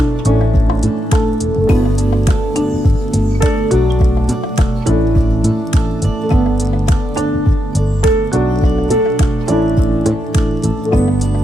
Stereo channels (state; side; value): normal; both; correlation 0.84